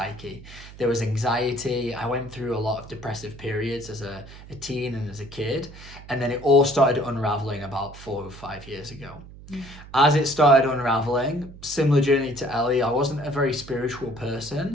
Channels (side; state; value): right; noise; hum, 17 dB below the sound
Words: There was anxiety. I went through a lot of depressive periods as a teen and as a kid, and then it all started unraveling about 4 or 5 years ago. As it started unraveling, similar journey to Ellie, I wasn't a very spiritual